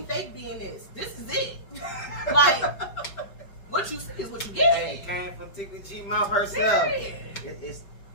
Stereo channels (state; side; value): late; right; 5.1 ms